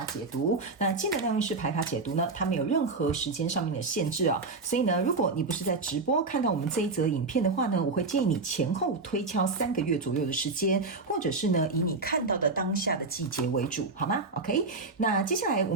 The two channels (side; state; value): left; quieter; 3.7 dB